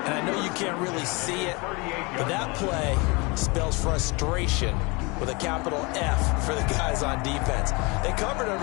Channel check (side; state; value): right; quieter; 27.6 dB